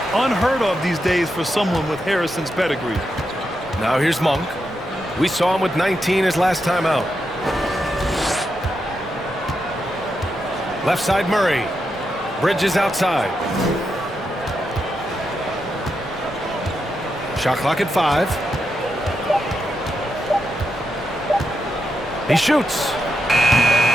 Unheard of these days for someone with Harrison's pedigree. Now here's Monk. We saw him with 19 his last time out. Left side Murray. Bridges outside. Shot clock at 5. He shoots.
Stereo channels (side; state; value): both; normal; correlation 0.85